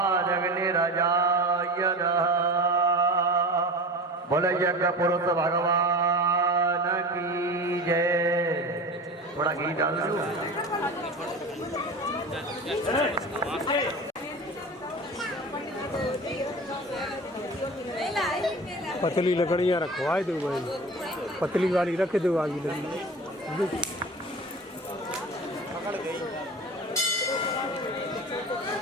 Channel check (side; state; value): both; normal; correlation 0.33